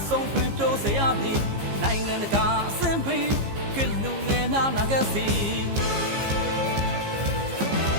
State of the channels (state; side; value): late; left; 15 ms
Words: ဆုံးခွင့်တိုးစေရမည်နိုင်ငံတကာအဆင့်ပေးကလူငယ်များနာခဲ့စီ